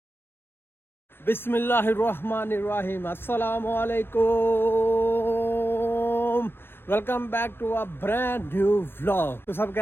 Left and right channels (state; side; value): late; right; 0.10 ms